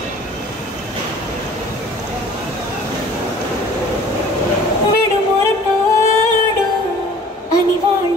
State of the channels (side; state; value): both; normal; correlation 0.49